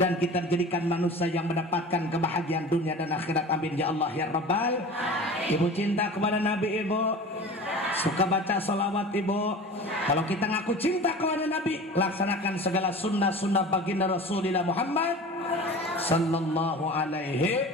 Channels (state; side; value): normal; both; correlation 0.37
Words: kita jadikan manusia yang mendapatkan kebahagiaan dunia dan akhirat. Amin ya Allah ya Rabbal. Ibu cinta kepada Nabi ibu, suka baca salawat ibu. Kalau kita ngaku cinta kepada Nabi, laksanakan segala sunnah-sunnah baginda Rasulullah Muhammad sallallahu alaihi